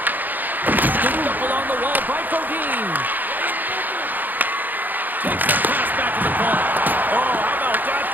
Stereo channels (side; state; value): left; late; 0.086 ms